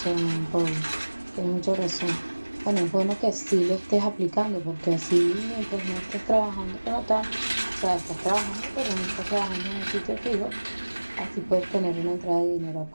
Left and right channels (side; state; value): both; inverted; correlation -1.00